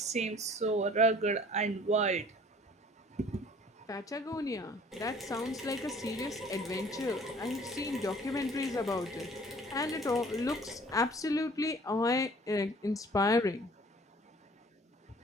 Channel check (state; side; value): normal; both; correlation 0.51